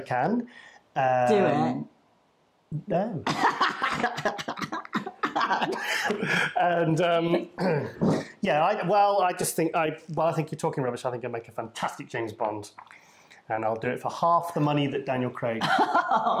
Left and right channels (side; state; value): both; identical; correlation 1.00